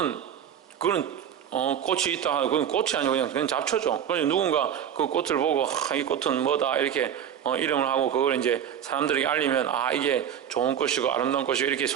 그런 꽃이 있다 하고 그건 꽃이 아니고 그냥 잡초죠. 그래서 누군가 그 꽃을 보고 이 꽃은 뭐다 이렇게 이름을 하고 그걸 이제 사람들에게 알리면 이게 좋은 꽃이고 아름다운 꽃이고 이렇게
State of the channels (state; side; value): quieter; left; 9.2 dB